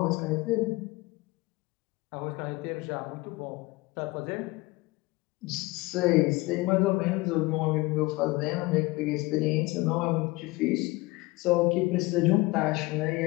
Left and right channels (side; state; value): right; quieter; 22.1 dB